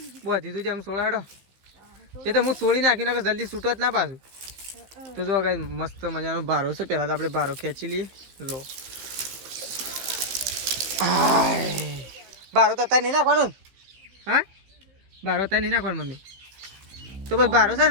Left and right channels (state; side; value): late; left; 15 ms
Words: બધી તું જેમ 16 હેડો એ તો હું છોડી નાખી નાખે જલ્દી છૂટો જ ના પાછું. તો જો કઈ મસ્ત મજાનો ભારો છે. પેલા તો આપણે ભારો ખેંચી લઈએ. જો ભારો તો અત્યારે નહીં નાખવાનું. હા ભારો અત્યારે નહીં નાખવાનું મમ્મી. તો બસ ભારો છે